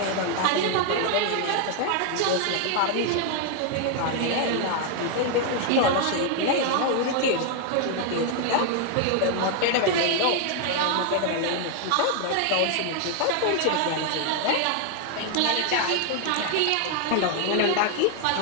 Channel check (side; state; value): both; different; correlation 0.00